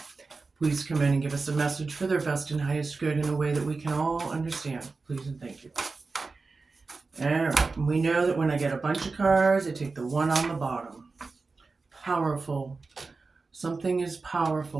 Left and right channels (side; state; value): left; quieter; 4.0 dB